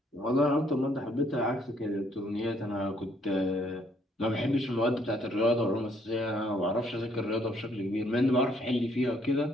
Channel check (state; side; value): normal; both; correlation 0.66